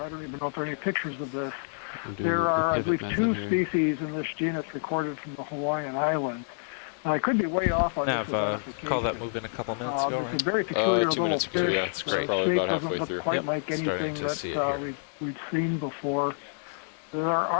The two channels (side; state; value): right; silent; digital silence